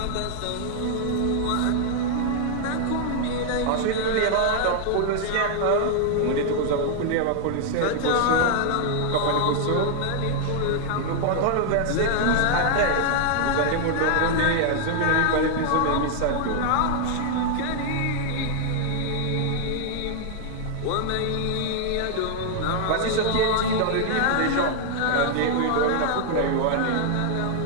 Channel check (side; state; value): both; different; correlation 0.00